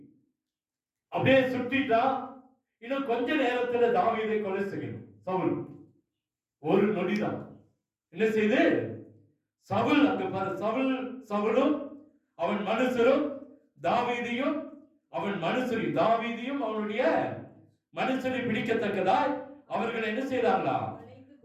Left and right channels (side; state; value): both; identical; correlation 1.00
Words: அப்படியே சுட்டிட்டான். இன்னும் கொஞ்ச நேரத்துல தாவீதை கொலை செய்யணும் சவுல். ஒரு நொடிதான். என்ன செய்து சவுல் அங்க பாரு, சவுலும் அவன் மனுஷரும் தாவீதையும் அவன் மனுஷரையும் தாவீதையும் அவனுடைய மனுஷரை பிடிக்கத்தக்கதாய் அவர்கள் என்ன செய்தாங்களா?